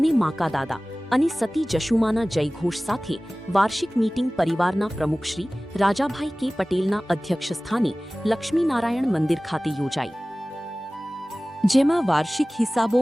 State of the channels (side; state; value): both; normal; correlation 0.98